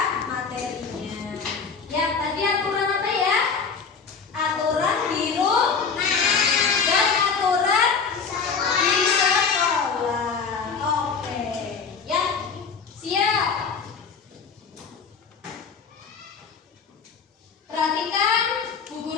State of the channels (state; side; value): quieter; right; 5.6 dB